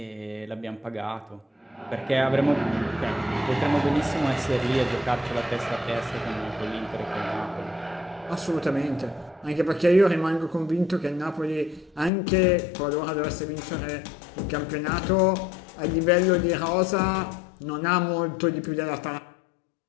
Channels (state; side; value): drops out; right; at 12.1 s